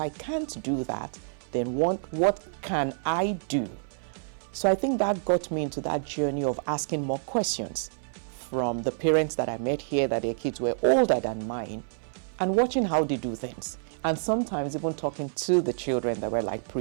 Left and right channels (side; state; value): left; silent; 59 dB below the other